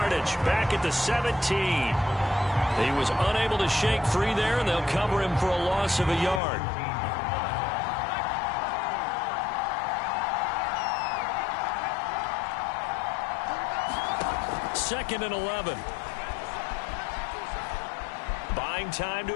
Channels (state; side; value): drops out; right; at 6.4 s